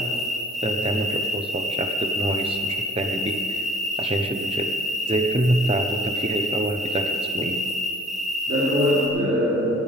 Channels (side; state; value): both; normal; correlation 0.52